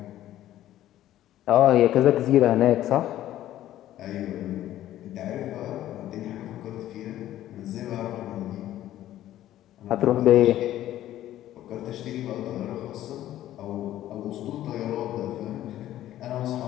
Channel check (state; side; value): quieter; right; 13.2 dB